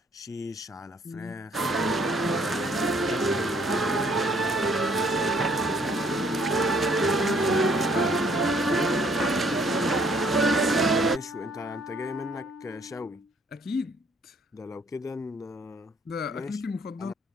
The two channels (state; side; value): normal; both; correlation 0.63